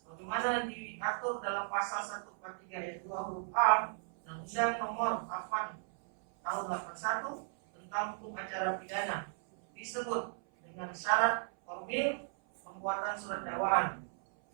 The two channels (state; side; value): silent; left; 54 dB below the other